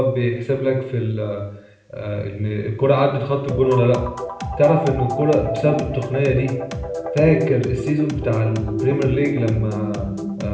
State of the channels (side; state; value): both; identical; correlation 1.00